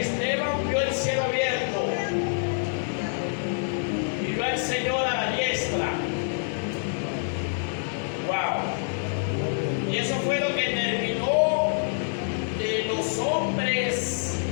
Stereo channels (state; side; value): silent; right; digital silence